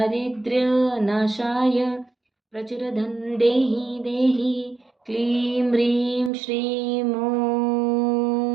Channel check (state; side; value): drops out; left; at 6.3 s